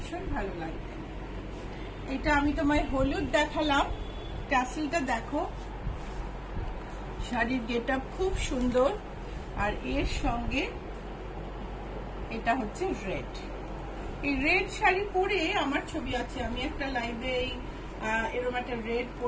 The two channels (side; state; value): both; identical; correlation 1.00